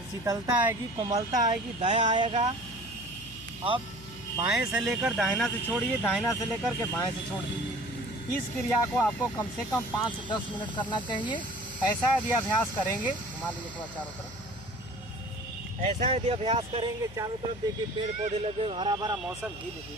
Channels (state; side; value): noise; left; hum, 17 dB below the sound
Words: शीतलता आएगी, कोमलता आएगी, दया आएगा। अब बाएं से लेकर दाहिना से छोड़िए, दाहिना से लेकर के बाएं से छोड़ दीजिए। इस क्रिया को आपको कम से कम 5 से 10 मिनट करना चाहिए। ऐसा यदि अभ्यास करेंगे, घुमा लीजिए थोड़ा चारों तरफ, ऐसा यदि अभ्यास करेंगे चारों तरफ, देखिए पेड़ पौधे लगे, हरा भरा मौसम, धीरे